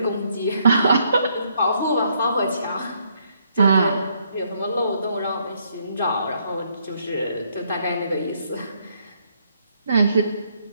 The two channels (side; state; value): both; inverted; correlation -0.71